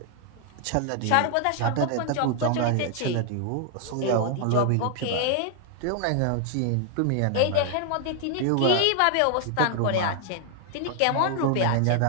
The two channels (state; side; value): different; both; correlation 0.00